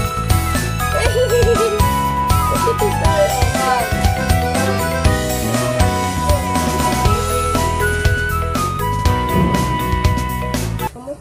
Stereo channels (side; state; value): both; identical; correlation 1.00